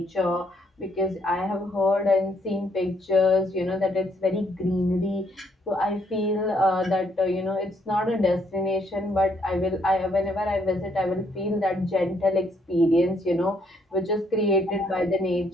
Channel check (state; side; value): normal; both; correlation 0.71